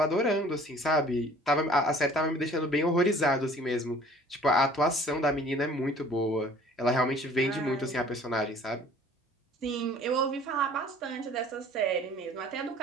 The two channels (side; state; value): both; normal; correlation 0.51